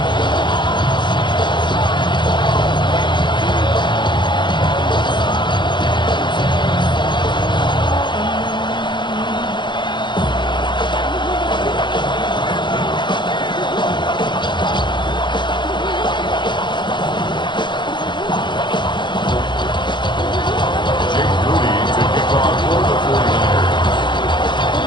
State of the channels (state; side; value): late; right; 0.22 ms